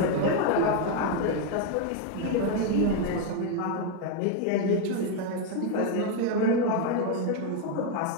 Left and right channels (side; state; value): both; different; correlation 0.01